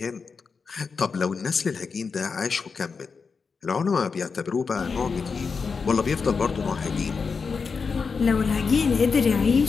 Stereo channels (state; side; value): quieter; right; 5.2 dB